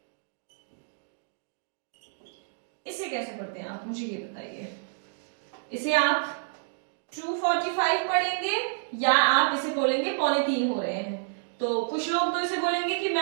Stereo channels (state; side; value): silent; left; digital silence